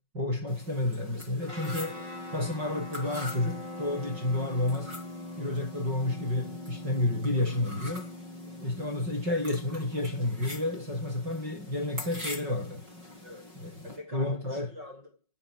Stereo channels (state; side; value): late; left; 5.4 ms